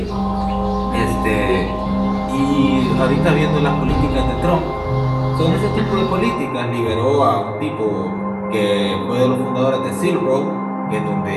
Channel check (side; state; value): both; identical; correlation 1.00